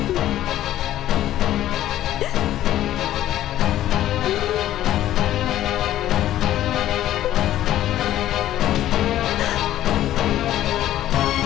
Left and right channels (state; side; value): quieter; right; 13.0 dB